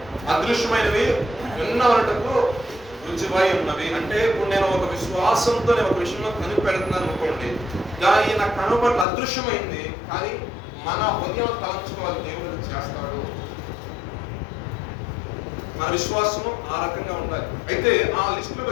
అదృశ్యమైనవి ఉన్నవనటకు రుచిపై ఉన్నవి. అంటే ఇప్పుడు నేను ఒక విశ్వాసంతో నేను ఒక విషయంలో కనిపెడుతున్నాను అనుకోండి, దాని నా కనుపట్ల అదృశ్యమైంది, కానీ మన హృదయం తలంచుకోవాలి, దేవుడు చేస్తాడు. మన విశ్వాసము ఆ రకంగా ఉండాలి. అయితే ఆ లిస్టులోకి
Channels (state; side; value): drops out; right; at 9.1 s